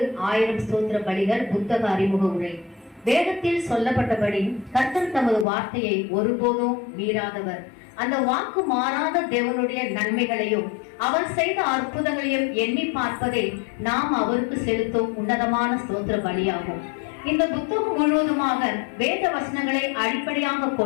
1000 ஸ்தோத்திர பலிகள் புத்தக அறிமுக உரை. வேதத்தில் சொல்லப்பட்டபடி கர்த்தர் தமது வார்த்தையை ஒருபோதும் மீறாதவர். அந்த வாக்கு மாறாத தேவனுடைய நன்மைகளையும் அவர் செய்த அற்புதங்களையும் எண்ணி பார்ப்பதே நாம் அவருக்கு செலுத்தும் உன்னதமான ஸ்தோத்திர பலியாகும். இந்த புத்தகம் முழுவதுமாக வேத வசனங்களை அடிப்படையாக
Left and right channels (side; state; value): right; drops out; at 5.5 s